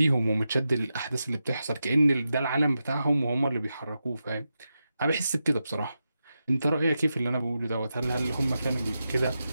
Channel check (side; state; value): both; inverted; correlation -0.89